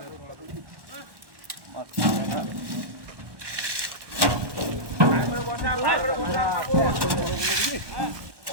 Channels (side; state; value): left; late; 1.1 ms